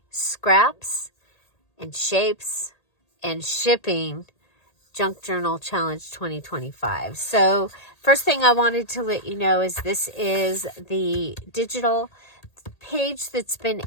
Scraps and Shapes and Shipping Junk Journal Challenge 2025. So first thing I wanted to let you know is this is the digital page that's been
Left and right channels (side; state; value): right; late; 1.8 ms